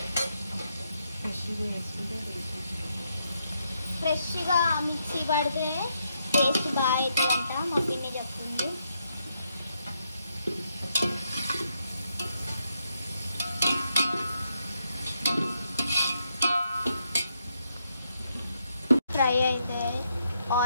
ఫ్రెష్గా మిక్సీ పడితే టేస్ట్ బాగా అవుతుందంట మా పిన్ని చెప్తుంది. ఫ్రై అయితే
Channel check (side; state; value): both; inverted; correlation -0.79